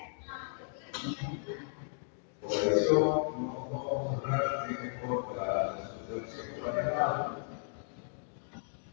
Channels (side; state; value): right; silent; digital silence